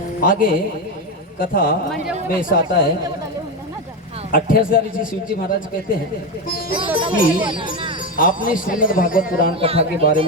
आगे कथा में ऐसा आता है, 28,000 ऋषि शिवजी महाराज कहते हैं कि आपने श्रीमद् भागवत पुराण कथा के बारे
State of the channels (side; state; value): both; normal; correlation 0.13